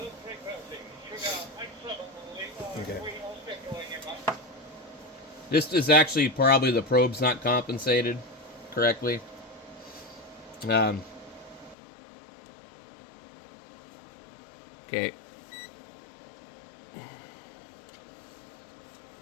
Okay. This is actually probably the probe's not compensated correctly. Okay.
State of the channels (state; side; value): drops out; right; at 11.8 s